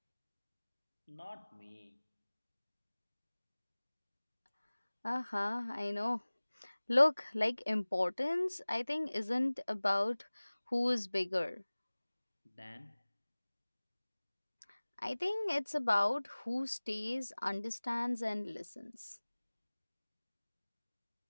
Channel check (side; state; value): both; inverted; correlation -1.00